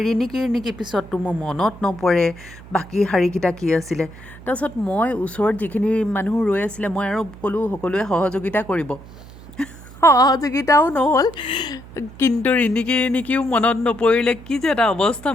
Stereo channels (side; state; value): right; noise; hum, 18 dB below the sound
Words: ৰিণিকি পিছততো মোৰ মনত নপৰে বাকী শাৰীকেইটা কি আছিলে। তাৰপিছত মই ওচৰত যিখিনি মানুহ ৰৈ আছিলে, মই আৰু ক'লোঁ সকলোৱে সহযোগিতা কৰিব। সহযোগিতাও নহ'ল, কিন্তু ৰিণিকিও মনত নপৰিলে। কি যে এটা অৱস্থা